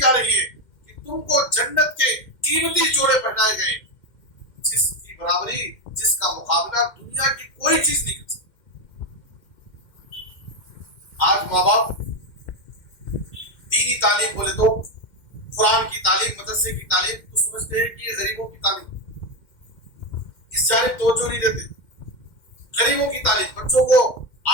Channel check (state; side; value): late; right; 2.1 ms